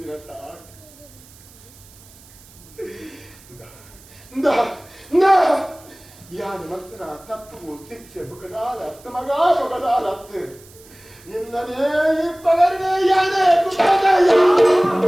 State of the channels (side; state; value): right; noise; hiss, 24 dB below the sound